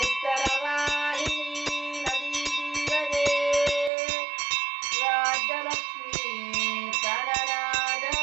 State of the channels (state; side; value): drops out; left; at 3.9 s